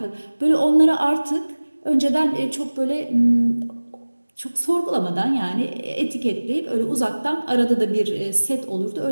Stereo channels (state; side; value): inverted; both; correlation -1.00